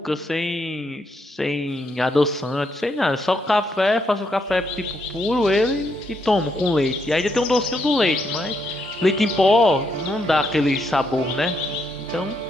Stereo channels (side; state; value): both; normal; correlation 0.77